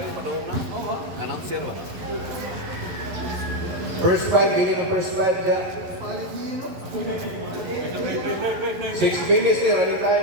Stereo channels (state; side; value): late; left; 11 ms